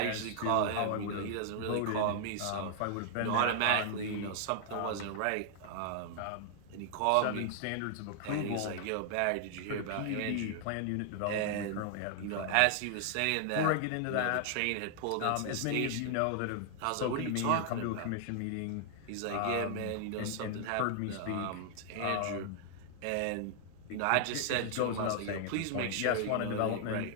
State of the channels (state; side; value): different; both; correlation -0.01